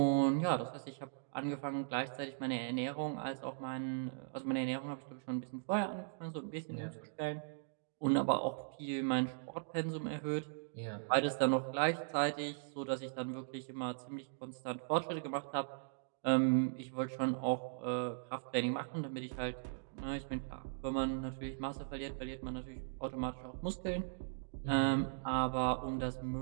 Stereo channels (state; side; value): silent; left; digital silence